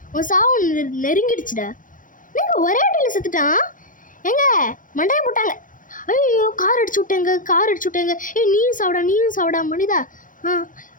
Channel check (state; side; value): late; right; 0.39 ms